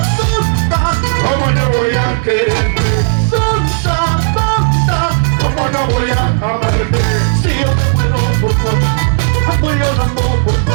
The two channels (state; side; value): silent; left; digital silence